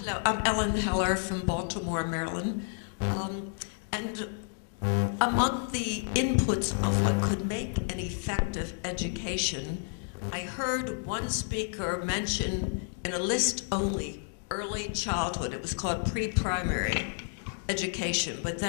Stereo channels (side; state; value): right; silent; 58 dB below the other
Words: I'm Ellen Heller from Baltimore, Maryland. And among the inputs of what could make an effective education, I heard one speaker mention in a list only early childhood. It was called pre-primary education, but